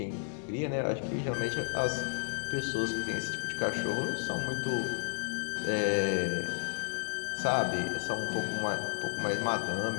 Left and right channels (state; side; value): silent; right; digital silence